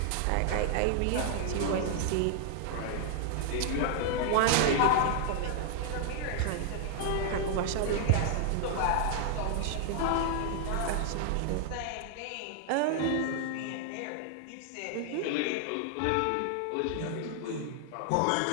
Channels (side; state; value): both; different; correlation 0.00